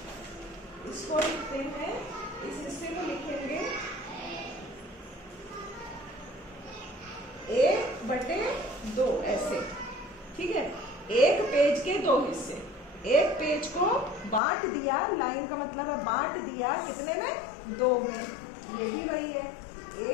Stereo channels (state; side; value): drops out; right; at 14.4 s